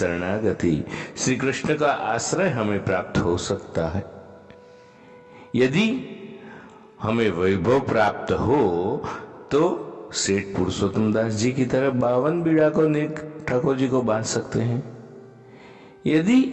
श्री कृष्ण का आश्रय हमें प्राप्त हो सकता है। यदि हमें वैभव प्राप्त हो तो सेठ पुरुषोत्तम दास जी की तरह 52 बीड़ा को नेक ठाकुर जी को बांध सकते हैं।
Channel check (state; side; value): identical; both; correlation 1.00